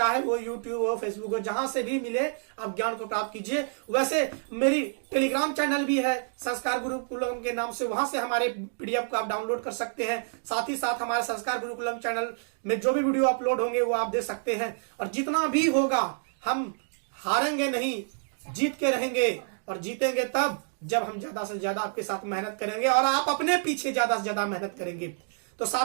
वो यूट्यूब हो, फेसबुक हो, जहां से भी मिले आप ज्ञान को प्राप्त कीजिए। वैसे मेरी टेलीग्राम चैनल भी है संस्कार गुरुकुलम के नाम से, वहां से हमारे पीडीएफ को आप डाउनलोड कर सकते हैं। साथ ही साथ हमारे संस्कार गुरुकुलम चैनल में जो भी वीडियो अपलोड होंगे वो आप देख सकते हैं। और जितना भी होगा हम हारेंगे नहीं, जीत के रहेंगे और जीतेंगे तब जब हम ज्यादा से ज्यादा आपके साथ मेहनत करेंगे और आप अपने पीछे ज्यादा से ज्यादा मेहनत करेंगे। तो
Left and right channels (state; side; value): silent; left; digital silence